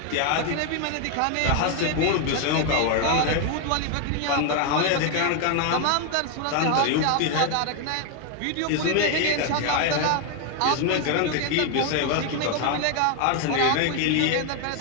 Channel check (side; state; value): both; different; correlation 0.01